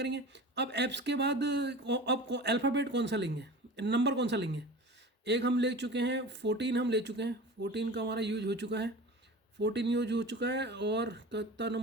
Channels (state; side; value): normal; both; correlation 0.35